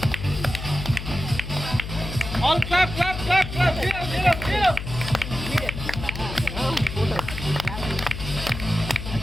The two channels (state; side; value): noise; left; hum, 8 dB below the sound